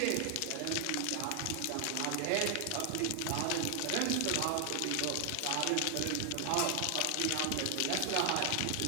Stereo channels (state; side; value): different; both; correlation 0.00